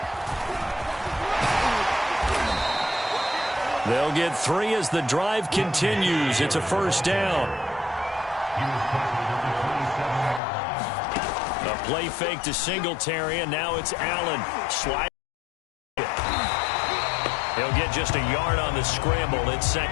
They'll get 3 as the drive continues. It's a first down. A play fake to Singletary, and now it's Allen. Slide. He'll get just a yard on the scramble. It's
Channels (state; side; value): drops out; right; at 10.4 s